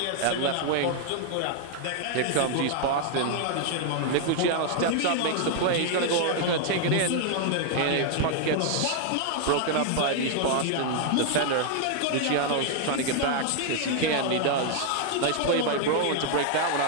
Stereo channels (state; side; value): different; both; correlation 0.00